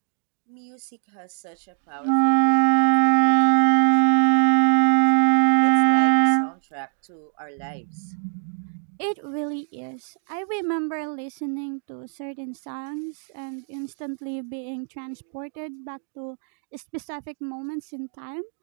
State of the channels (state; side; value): silent; left; 63 dB below the other